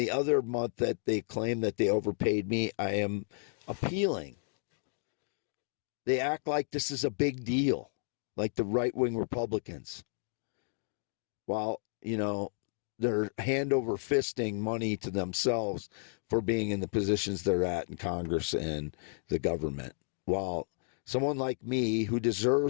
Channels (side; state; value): right; silent; digital silence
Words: other month that they claim that they overpaid me, I am appealing. They act like this is a big deal, like the right-wing Republicans. While, you know, they're hand over fisting money to themselves for being in the positions they're at in Congress and the government. While someone like me who